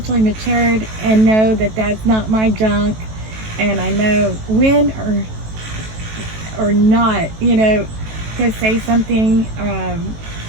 matured and know that that's not my junk, and I know when or not, to say something,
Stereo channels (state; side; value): late; left; 18 ms